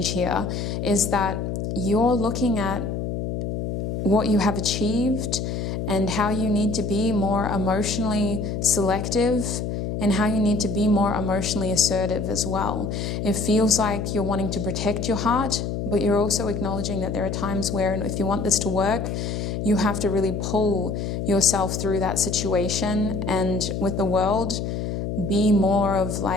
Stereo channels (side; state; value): left; noise; hum, 3 dB below the sound